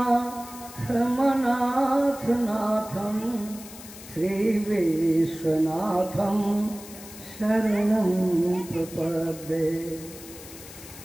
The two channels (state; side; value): noise; left; hiss, 16 dB below the sound